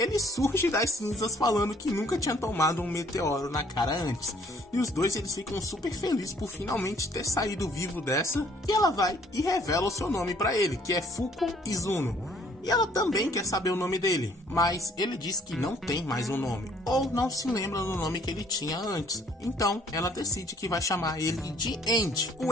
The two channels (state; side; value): normal; both; correlation 0.61